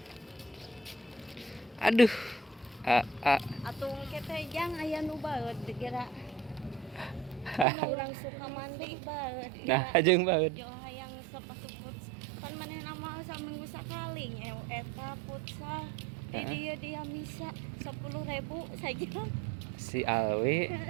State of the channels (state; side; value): drops out; left; at 7.7 s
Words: Aduh. Atuh engke teh jang aya nu baeud kira. Urang suka mandi baeud. Nah, jeung banget. Jo hayang sepatu futsal. Pan manehna mah saminggu sakali nyew eta futsal. Di dieu dia misa 10.000 saja. Si Alwi